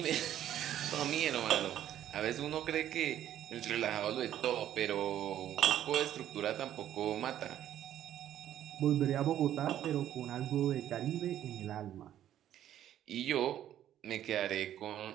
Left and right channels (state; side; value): quieter; left; 11.4 dB